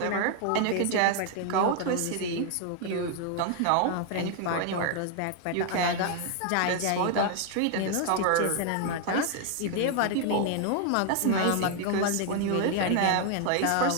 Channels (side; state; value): both; different; correlation 0.00